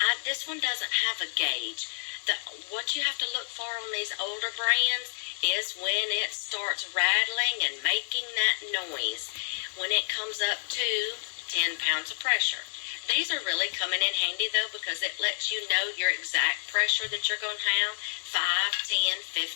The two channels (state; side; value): silent; right; digital silence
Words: this one doesn't have a gauge. What you have to look for on these older brands is when it starts rattling and making that noise. When it comes up to 10 pounds of pressure. These are really coming in handy, though, because it lets you know your exact pressure that you're going to have, 5, 10,